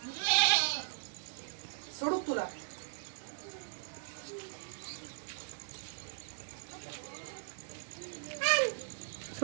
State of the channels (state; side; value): silent; left; digital silence